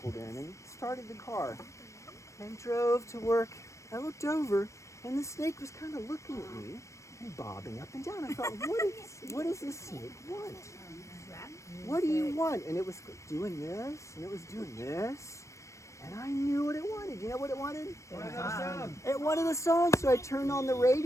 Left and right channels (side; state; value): right; late; 0.15 ms